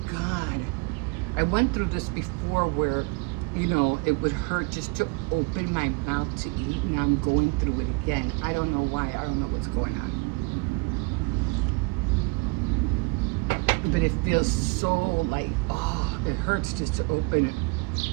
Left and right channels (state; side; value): quieter; left; 28.6 dB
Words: God. I went through this before where, it would hurt just to open my mouth to eat. Now I'm going through it again. I don't know why. I don't know what's going on. But it feels so like, oh, it hurts just to open